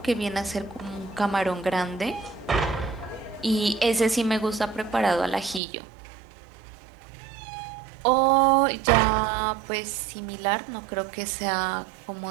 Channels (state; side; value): drops out; left; at 5.6 s